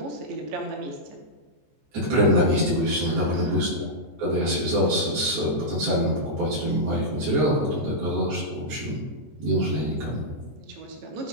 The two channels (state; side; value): late; left; 14 ms